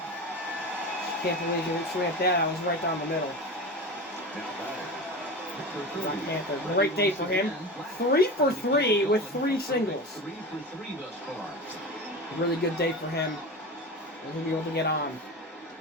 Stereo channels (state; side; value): normal; both; correlation 0.28